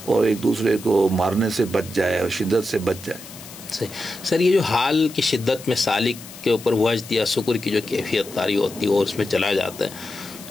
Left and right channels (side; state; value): left; noise; hiss, 16 dB below the sound